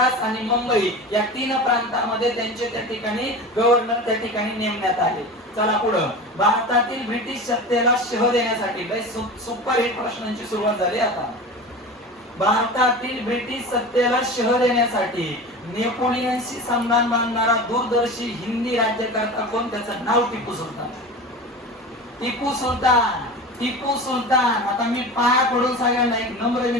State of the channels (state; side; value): normal; both; correlation 0.31